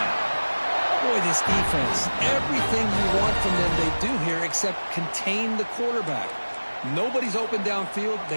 Boy, this defense, everything you want from them they do here except contain the quarterback. Nobody's open downfield.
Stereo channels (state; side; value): inverted; both; correlation -1.00